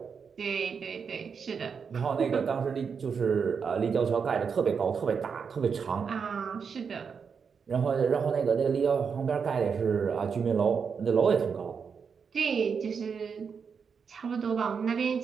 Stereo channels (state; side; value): quieter; left; 6.1 dB